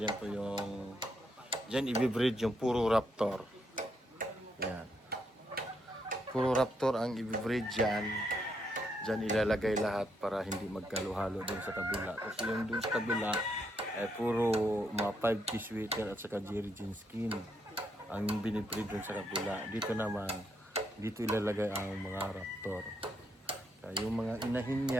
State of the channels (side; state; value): both; normal; correlation 0.77